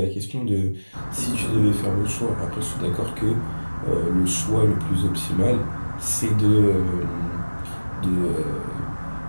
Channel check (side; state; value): both; inverted; correlation -1.00